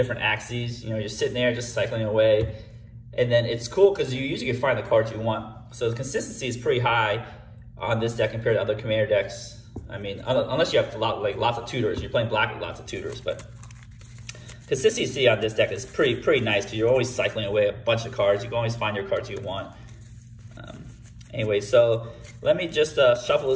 axes. You're sitting there just cycling away. And then it's cool because you usually can find the cards you want. So the consistency is pretty high on this deck compared to other commander decks. I mean, unless you have lots of tutors. You're playing black with lots of tutors, but consistency on this deck is pretty nice because you're always cycling away a bunch of cards. You can always find your cards you want. Anyway, so let me just shuffle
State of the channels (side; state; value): both; identical; correlation 1.00